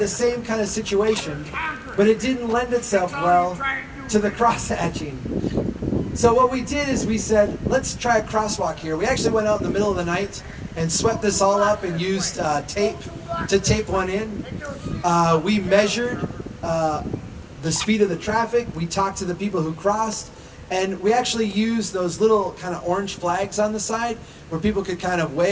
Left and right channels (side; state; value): both; identical; correlation 1.00